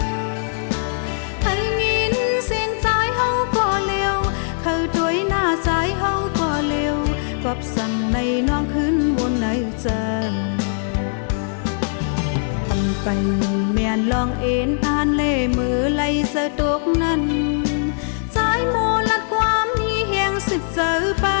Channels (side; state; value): right; silent; digital silence